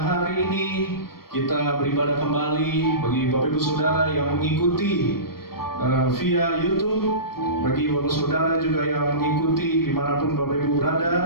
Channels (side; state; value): right; late; 0.94 ms